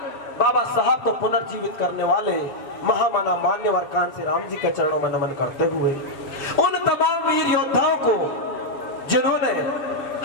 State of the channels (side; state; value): right; late; 7.1 ms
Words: बाबा साहब को पुनर्जीवित करने वाले महामाना मान्यवर कांसी राम जी के चरणों में नमन करते हुए, उन तमाम वीर योद्धाओं को जिन्होंने